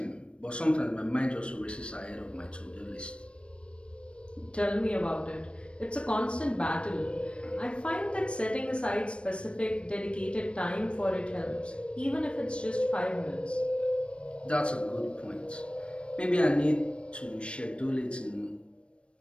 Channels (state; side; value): late; right; 0.058 ms